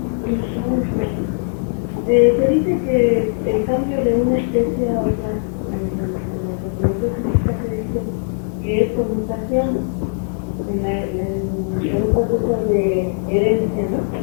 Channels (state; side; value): silent; right; 65 dB below the other